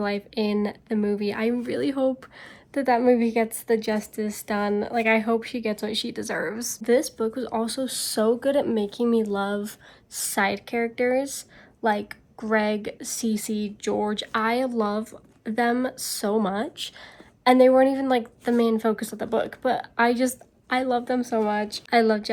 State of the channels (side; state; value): both; identical; correlation 1.00